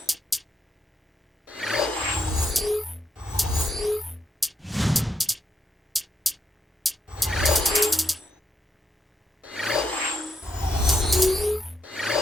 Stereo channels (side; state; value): both; normal; correlation 0.79